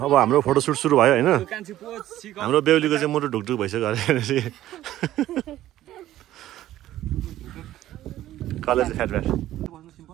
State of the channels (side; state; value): left; quieter; 13.7 dB